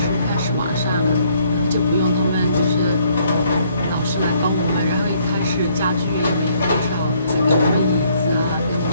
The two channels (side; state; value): both; inverted; correlation -0.66